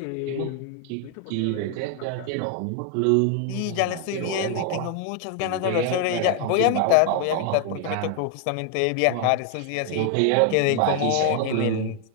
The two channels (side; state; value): both; different; correlation 0.00